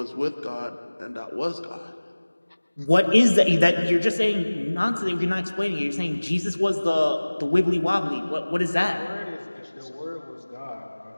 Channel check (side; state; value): both; inverted; correlation -1.00